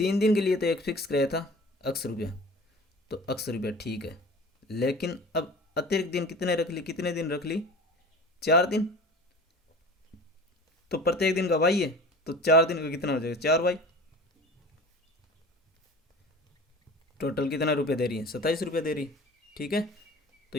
दिन के लिए तो एक फिक्स कराया था ₹80, तो ₹80 ठीक है। लेकिन अब अतिरिक्त दिन कितने रख ली, कितने दिन रख ली, 4 दिन। तो प्रत्येक दिन का वाई है, तो 4 दिन का कितना हो जाएगा, 4Y। टोटल कितना रुपये दे रही है, ₹27 दे रही। ठीक है, तो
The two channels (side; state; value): both; normal; correlation 0.40